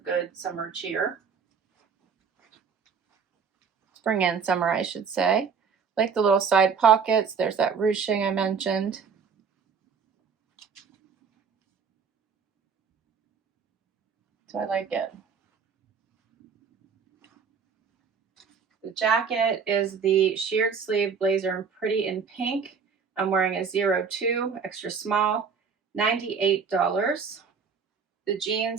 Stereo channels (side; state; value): left; quieter; 6.0 dB